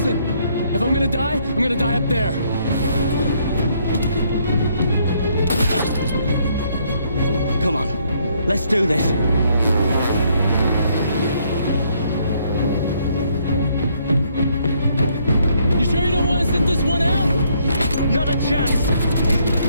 If I'm gonna die, I'm gonna die up there. Come on, let's do this. You sure you don't want to sit this one out? Not a chance.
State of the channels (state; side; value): inverted; both; correlation -0.69